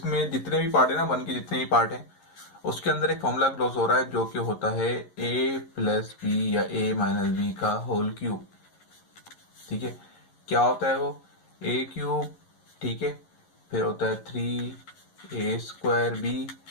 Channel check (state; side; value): late; right; 11 ms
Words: जितने भी पार्ट है ना, 1 के जितने भी पार्ट है उसके अंदर एक फॉर्मूला क्लोज हो रहा है जो कि होता है a प्लस बी या a माइनस बी का होल क्यूब। ठीक है, क्या होता है वो, a क्यूब, ठीक है, फिर होता है 3a square b